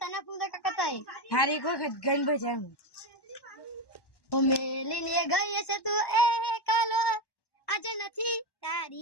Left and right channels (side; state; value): right; late; 1.1 ms